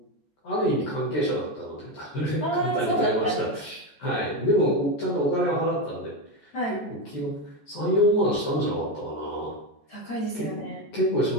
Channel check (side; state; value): right; late; 14 ms